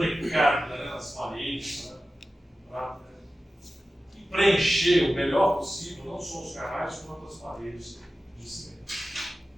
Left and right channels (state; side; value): normal; both; correlation 0.94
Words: né, nas paredes, né, para preencher o melhor possível, não só os canais, quanto as paredes de cimento.